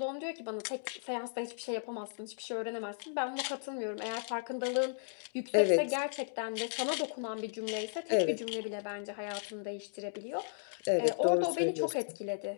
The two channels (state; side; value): silent; right; digital silence